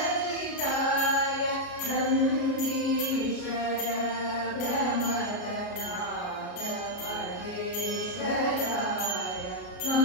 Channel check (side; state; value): right; late; 33 ms